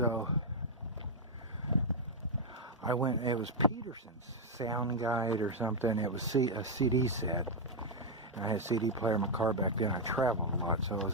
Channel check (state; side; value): normal; both; correlation -0.01